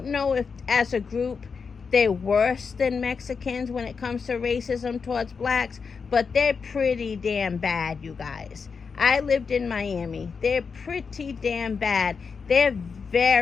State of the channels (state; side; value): quieter; right; 5.5 dB